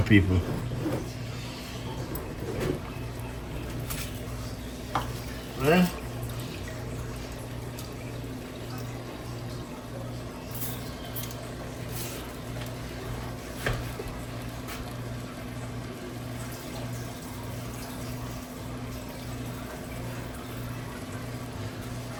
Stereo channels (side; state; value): both; identical; correlation 1.00